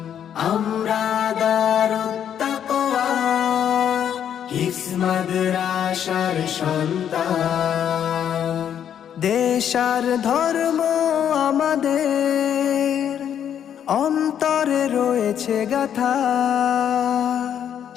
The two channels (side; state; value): right; quieter; 9.2 dB